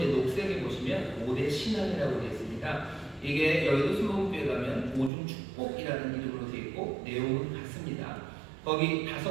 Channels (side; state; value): left; drops out; at 5.1 s